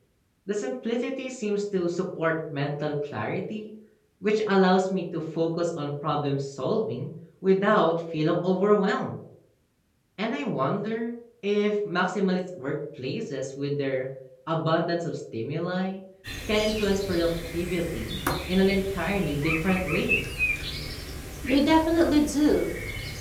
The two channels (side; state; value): both; identical; correlation 1.00